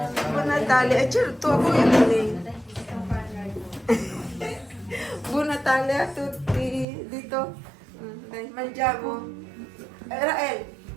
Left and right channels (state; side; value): drops out; left; at 6.9 s